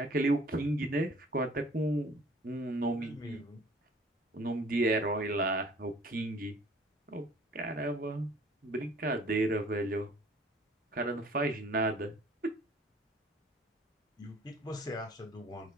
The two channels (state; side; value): normal; both; correlation 0.53